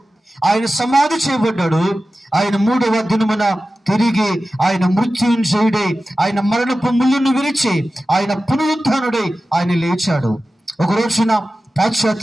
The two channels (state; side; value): normal; both; correlation 0.94